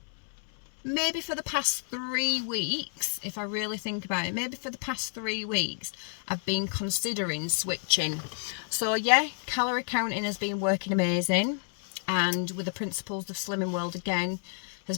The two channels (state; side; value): silent; right; 55 dB below the other